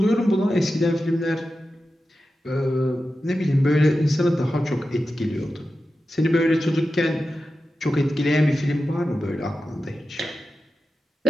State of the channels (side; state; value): both; normal; correlation 0.92